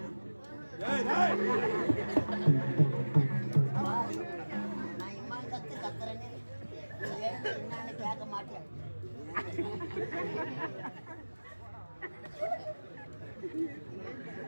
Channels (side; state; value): both; inverted; correlation -1.00